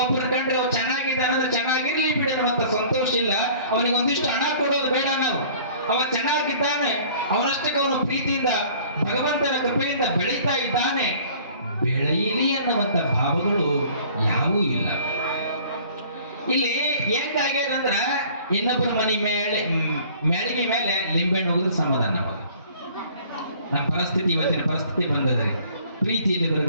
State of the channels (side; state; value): both; inverted; correlation -0.51